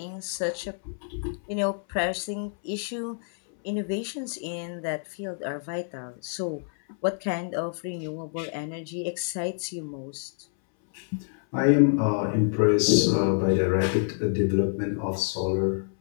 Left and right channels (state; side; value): silent; right; 60 dB below the other